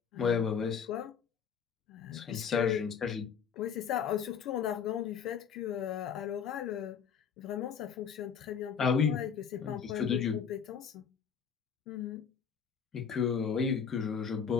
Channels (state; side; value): quieter; right; 7.1 dB